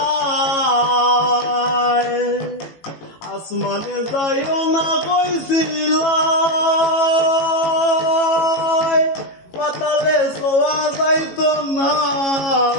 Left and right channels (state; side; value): late; right; 18 ms